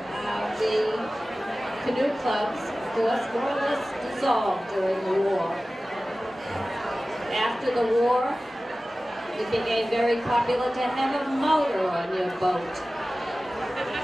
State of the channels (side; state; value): both; normal; correlation 0.96